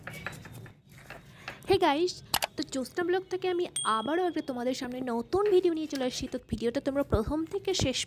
হে গাইস, তো জ্যোৎস্না ব্লগ থেকে আমি আবারও একটা তোমাদের সামনে নতুন ভিডিও নিয়ে চলে আসছি। তো ভিডিওটা তোমরা প্রথম থেকে শেষ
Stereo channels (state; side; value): identical; both; correlation 1.00